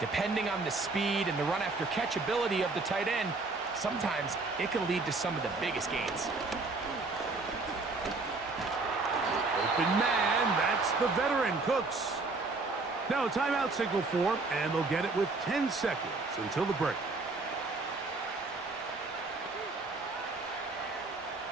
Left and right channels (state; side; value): quieter; left; 3.6 dB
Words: on the speed and the run after catch ability of the tight end, sometimes it can lead to some of the biggest gains. Open man, that's the veteran Cooks. Now a timeout signal for him, and they'll get it with 10 seconds until the break.